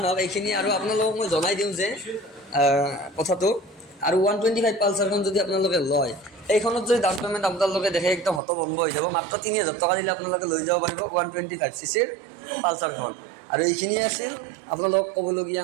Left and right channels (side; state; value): left; drops out; at 8.4 s